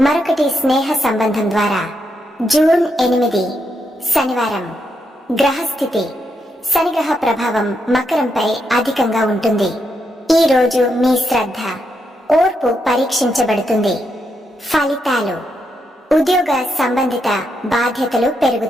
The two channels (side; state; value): both; normal; correlation 0.81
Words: మరొకటి స్నేహ సంబంధం ద్వారా. జూన్ 8 శనివారం. గ్రహస్థితి. శనిగ్రహ ప్రభావం మకరంపై అధికంగా ఉంటుంది. ఈ రోజు మీ శ్రద్ధ, ఓర్పు పరీక్షించబడుతుంది. ఫలితాలు: ఉద్యోగ సంబంధిత బాధ్యతలు